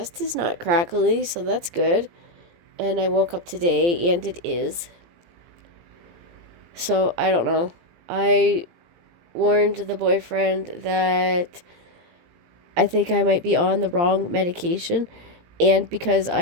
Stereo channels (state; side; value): late; left; 18 ms